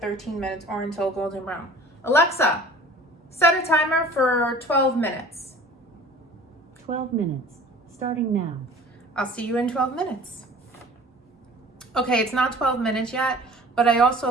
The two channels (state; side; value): normal; both; correlation 0.45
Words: minutes or until golden brown. Alexa, set a timer for 12 minutes. 12 minutes, starting now. I'll see you in 12 minutes. Okay, it's not 12 minutes yet, but I